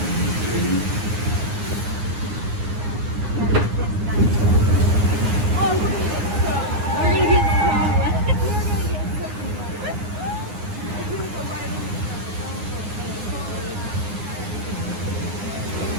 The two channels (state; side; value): late; left; 9.7 ms